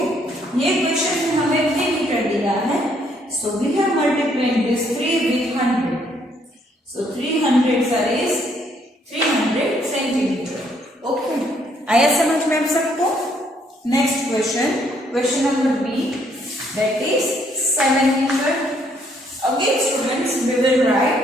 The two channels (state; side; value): normal; both; correlation 0.68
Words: ये क्वेश्चन में हमें 3 मीटर दिया है. So we have multiplied this 3 with 100. So 300 sir is 300 centimetre. Okay. आया समझ में आप सबको? Next question, question number B, that is 7 metre. Again students we will write